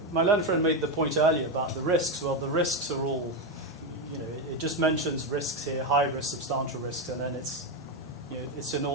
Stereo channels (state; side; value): normal; both; correlation 0.09